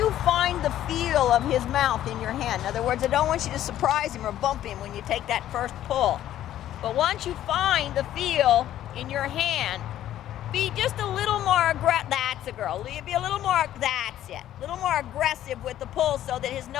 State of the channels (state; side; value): quieter; right; 12.3 dB